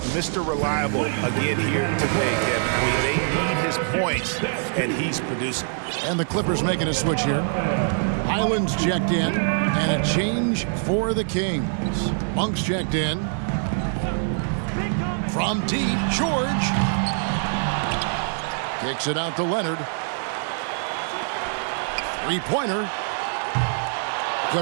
Mr. Reliable again here today, Kevin. They need his points, and he's producing. And the Clippers making a switch here. Highland's checked in, and a change for the Kings. Monk's checked in. From deep, George. Kicks it out to Leonard. Three-pointer.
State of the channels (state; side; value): silent; left; digital silence